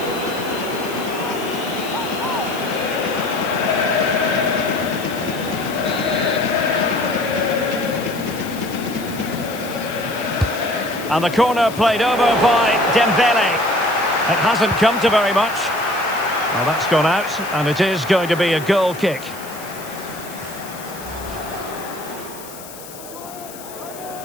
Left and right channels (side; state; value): left; noise; hiss, 16 dB below the sound